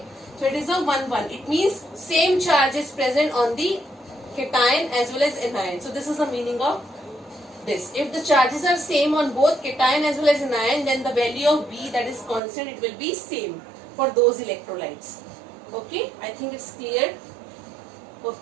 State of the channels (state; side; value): drops out; left; at 12.4 s